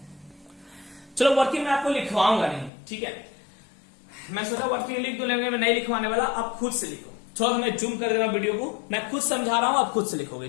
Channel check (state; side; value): drops out; right; at 2.7 s